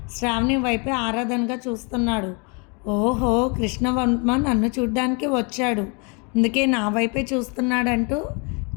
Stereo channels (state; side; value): quieter; right; 33.6 dB